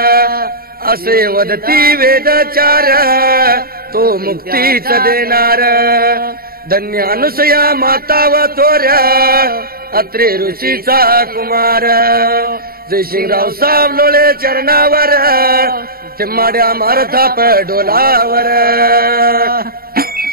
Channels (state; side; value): late; left; 0.43 ms